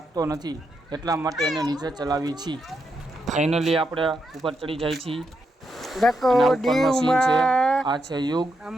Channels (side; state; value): both; normal; correlation 0.82